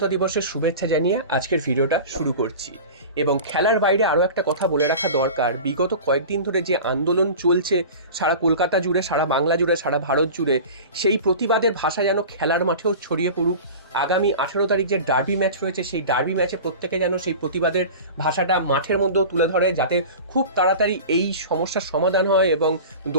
দিবসের শুভেচ্ছা জানিয়ে আজকের ভিডিওটা শুরু করছি। এবং খেলার বাইরে আরও একটা কথা বলে রাখা দরকার, বিগত কয়েকদিন ধরে যে আন্দোলন চলছে সারা কলকাতা জুড়ে, সারা বাংলা জুড়ে, সারা ভারত জুড়ে, সেই প্রতিবাদের ভাষা যেন খেলার মাঠেও ছড়িয়ে পড়ুক। আগামী 18 তারিখ যে ডার্বি ম্যাচ রয়েছে, সেই ডার্বি ম্যাচে প্রত্যেকে যেন সেই প্রতিবাদের ভাষাটা মাঠের মধ্যেও তুলে ধরে, যাতে খুব তাড়াতাড়ি এই সমস্যার সমাধান হয় এবং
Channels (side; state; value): both; inverted; correlation -0.35